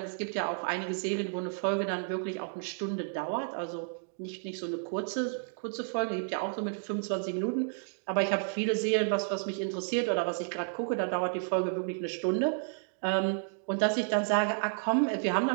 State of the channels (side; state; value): left; silent; digital silence